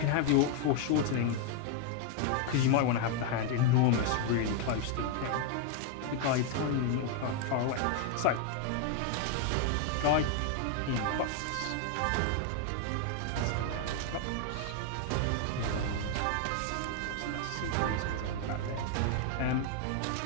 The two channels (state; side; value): different; both; correlation 0.00